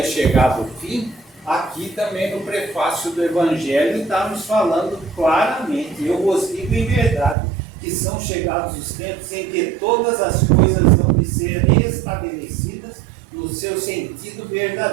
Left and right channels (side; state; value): left; drops out; at 7.4 s